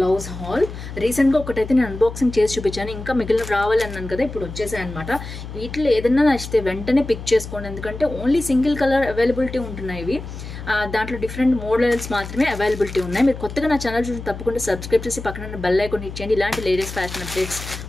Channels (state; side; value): noise; left; hum, 10 dB below the sound